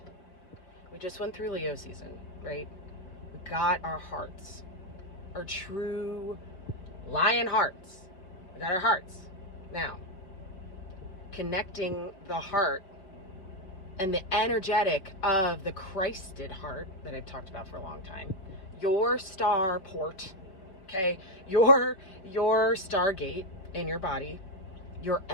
We just went through Leo season, right? We got our hearts, our true lion hearts. We got our hearts. Now, connecting the heart and the energetic of the Christed heart that I've talked about for a long time, your star port, okay, your stargate in your body, your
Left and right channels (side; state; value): right; late; 5.2 ms